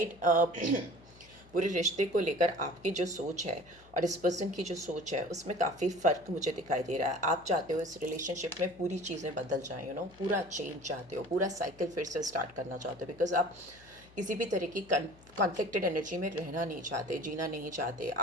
पूरे रिश्ते को लेकर आपकी जो सोच है और इस पर्सन की जो सोच है उसमें काफ़ी फ़र्क मुझे दिखाई दे रहा है। आप चाहते हो इस रिलेशनशिप में पूरी चीज़ें बदल जाएं, पूरा चेंज चाहते हो, पूरा साइकिल फिर से स्टार्ट करना चाहते हो। बिकॉज आप किसी भी तरह की कॉन्फ्लिक्टेड एनर्जी में रहना नहीं चाहते, जीना नहीं चाहते।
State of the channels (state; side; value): noise; left; hum, 25 dB below the sound